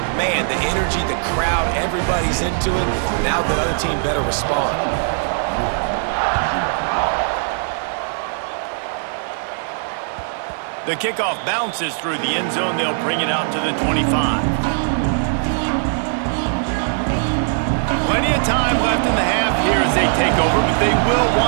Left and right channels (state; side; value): silent; left; 57 dB below the other